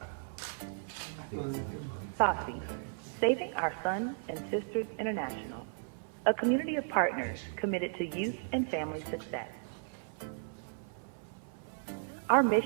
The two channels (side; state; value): left; silent; 54 dB below the other